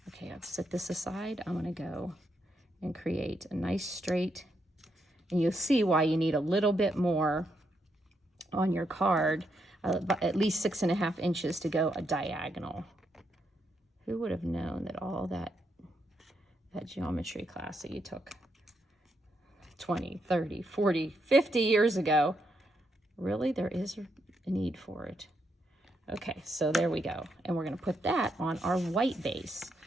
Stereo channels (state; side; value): normal; both; correlation 0.80